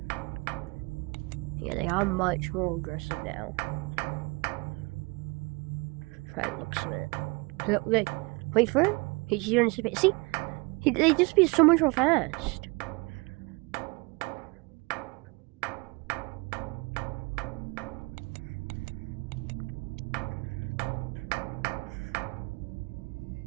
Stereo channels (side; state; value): left; quieter; 27.8 dB